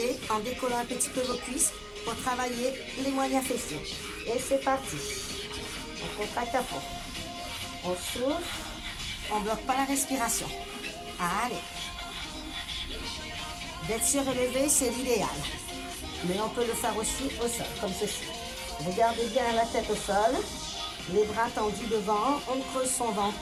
en décollant un petit peu vos cuisses pour travailler les moyens fessiers. Et c'est parti. On contracte à fond. On souffle. On ne bloque pas la respiration. Allez. D'être surélevé, c'est l'idéal. Mais on peut le faire aussi au sol, comme ceci. Regardez bien la tête au sol. Les bras tendus devant. On creuse son ventre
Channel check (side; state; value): both; identical; correlation 1.00